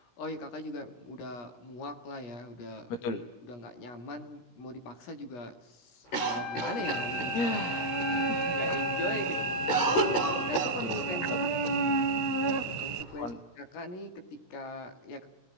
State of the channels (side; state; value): right; late; 16 ms